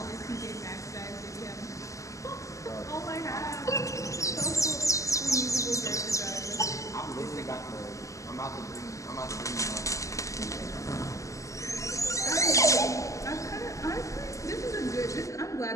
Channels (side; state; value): right; late; 0.16 ms